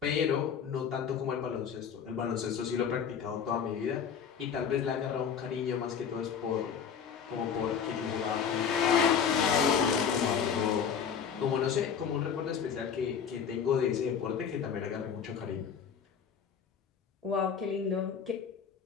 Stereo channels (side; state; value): right; quieter; 7.3 dB